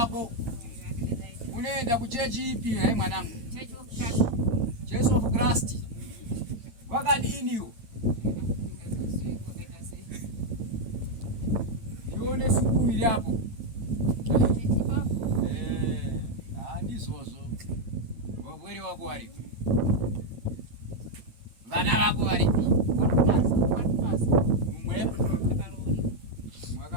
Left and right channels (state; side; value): late; left; 9.1 ms